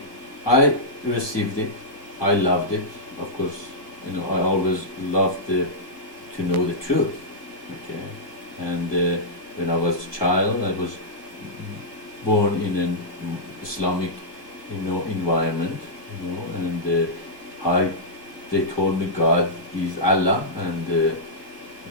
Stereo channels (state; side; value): late; right; 1.2 ms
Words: I received it, I loved it, of course, I always loved to know the truth, okay? And when I was a child, I was born in an Islamic, environment, and they told me God is Allah, and